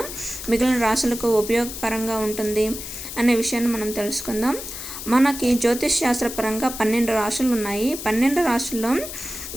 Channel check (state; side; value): noise; left; hiss, 9 dB below the sound